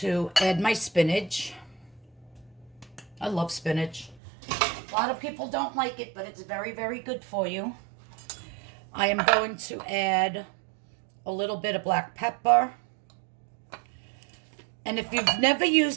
add my spinach. I love spinach. A lot of people don't like it, but it's very, very good for you. I am going to add a little bit of black pepper. And if you've never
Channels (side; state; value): left; drops out; at 4.2 s